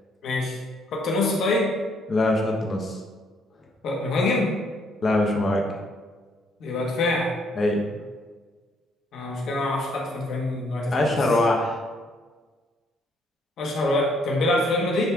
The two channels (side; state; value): both; normal; correlation 0.68